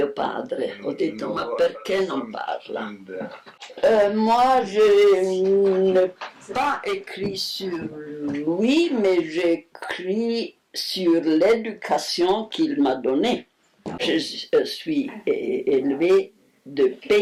padre. Ho detto, ma perché non parla? Moi, je n'ai pas écrit sur lui, mais j'écris sur l'éducation qu'il m'a donnée. Je suis élevée de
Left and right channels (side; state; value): both; identical; correlation 1.00